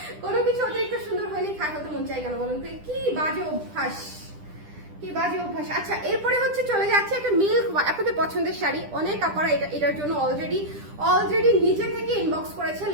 কোনো কিছু অতিরিক্ত সুন্দর হয়নি খাই হতে মন চাই কেন বলুন তো? কি বাজে অভ্যাস, কি বাজে অভ্যাস। আচ্ছা, এরপরে হচ্ছে চলে যাচ্ছে একটা মিল্ক, আপনাদের পছন্দের শাড়ি। অনেক আপনারা এটার জন্য অলরেডি নিজে থেকে ইনবক্স করেছে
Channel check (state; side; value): late; left; 10 ms